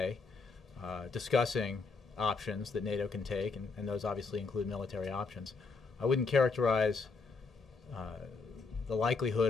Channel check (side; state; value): right; quieter; 4.3 dB